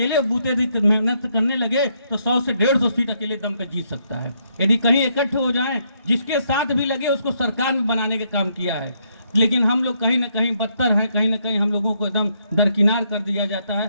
बूते मेहनत करने लगे तो 100 से 150 सीट अकेले दम पे जीत सकता है। यदि कहीं इकट्ठे हो जाएं, जिसके साथ भी लगे उसको सरकार में बनाने का काम किया है। लेकिन हम लोग कहीं ना कहीं बदतर हैं, कहीं ना कहीं हम लोगों को एकदम दरकिनार कर दिया जाता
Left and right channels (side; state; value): both; inverted; correlation -0.74